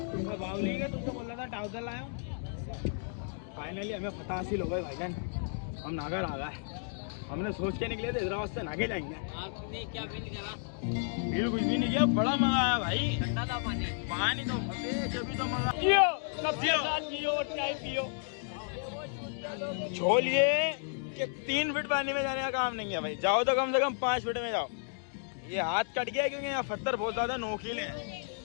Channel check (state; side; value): silent; right; digital silence